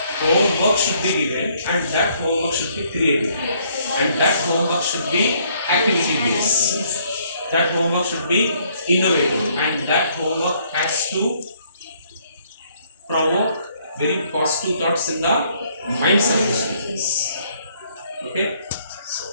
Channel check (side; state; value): both; inverted; correlation -0.66